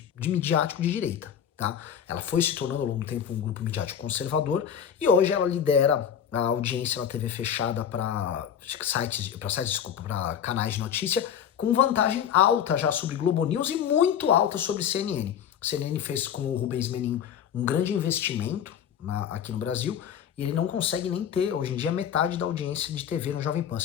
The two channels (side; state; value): right; quieter; 8.7 dB